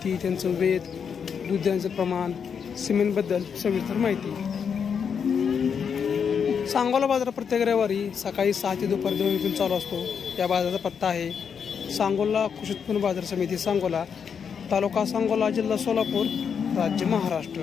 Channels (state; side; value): quieter; right; 6.9 dB